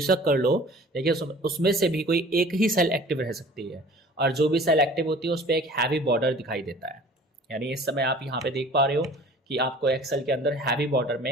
कर लो लेकिन उसमें से भी कोई एक ही सेल एक्टिव रह सकती है। और जो भी सेल एक्टिव होती है उस पर एक हैवी बॉर्डर दिखाई देता है। यानी इस समय आप यहाँ पे देख पा रहे हो कि आपको एक्सेल के अंदर हैवी बॉर्डर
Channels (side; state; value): both; normal; correlation 0.47